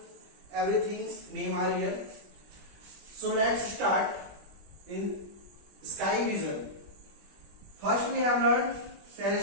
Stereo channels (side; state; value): left; late; 20 ms